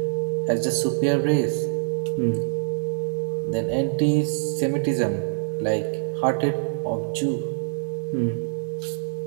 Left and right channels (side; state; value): left; silent; digital silence